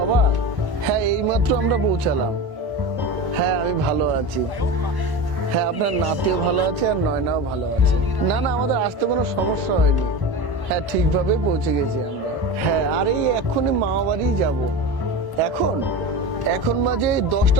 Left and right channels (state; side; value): late; left; 1.1 ms